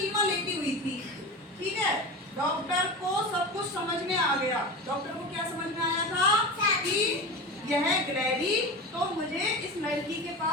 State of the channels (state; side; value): normal; both; correlation 0.27